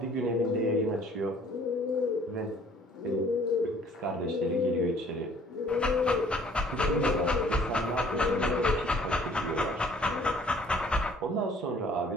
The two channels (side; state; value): both; normal; correlation 0.56